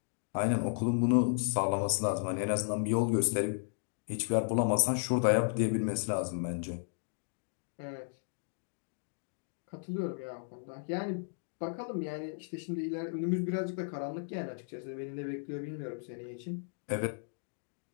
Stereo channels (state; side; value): silent; right; digital silence